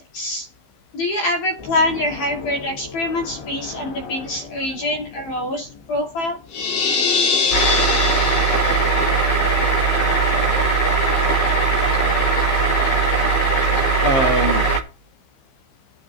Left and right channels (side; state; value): right; late; 15 ms